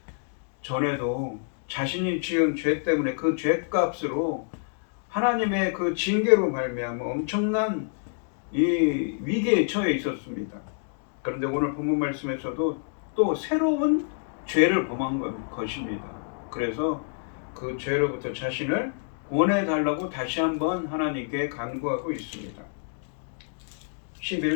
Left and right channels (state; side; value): silent; right; digital silence